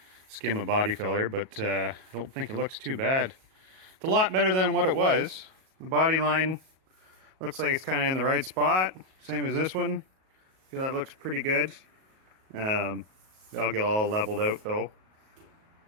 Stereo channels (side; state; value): left; late; 37 ms